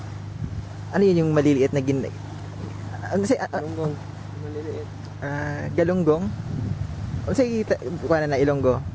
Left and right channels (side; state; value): both; identical; correlation 1.00